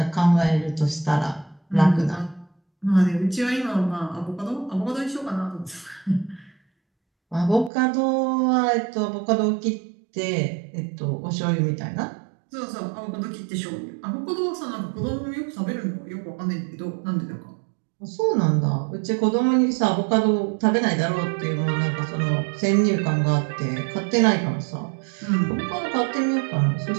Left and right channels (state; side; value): drops out; left; at 7.7 s